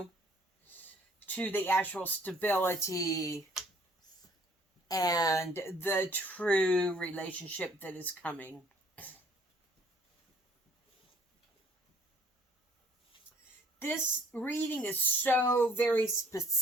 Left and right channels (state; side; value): normal; both; correlation 0.58